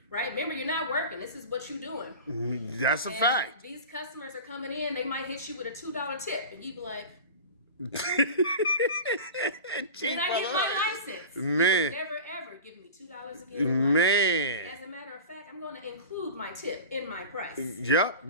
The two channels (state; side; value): inverted; both; correlation -0.33